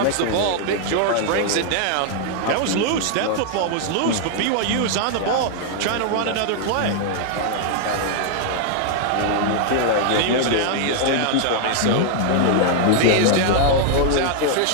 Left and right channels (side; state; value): both; different; correlation 0.00